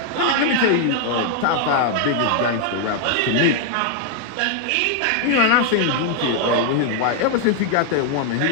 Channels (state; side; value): different; both; correlation 0.00